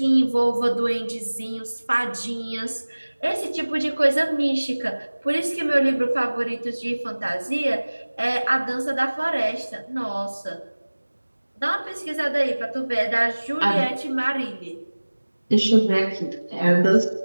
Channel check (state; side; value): inverted; both; correlation -1.00